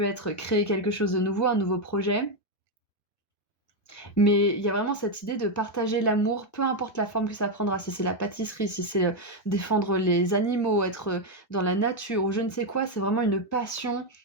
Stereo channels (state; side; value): late; right; 1.3 ms